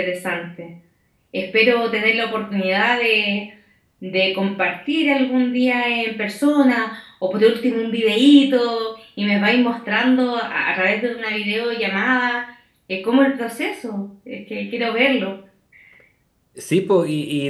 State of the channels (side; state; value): both; identical; correlation 1.00